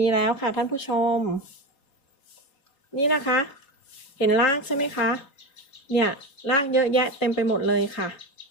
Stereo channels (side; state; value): right; late; 3.6 ms